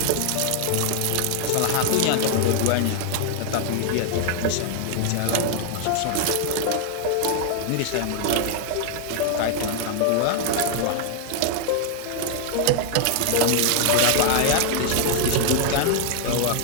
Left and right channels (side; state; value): both; different; correlation 0.00